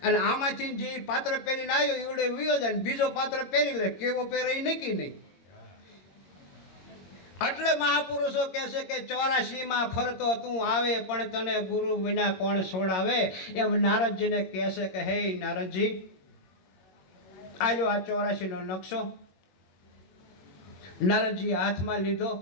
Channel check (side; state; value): right; late; 22 ms